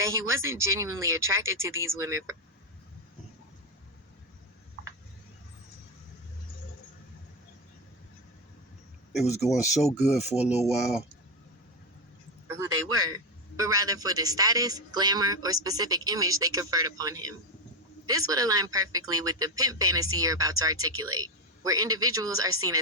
he wasn't genuinely attracted to these women It was going so good for a little while. for who they were, but rather for the status, glamour, or specific image they conferred upon him. This would align perfectly with the pimp fantasy you're about to articulate, where individuals are seen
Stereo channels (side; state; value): both; normal; correlation 0.11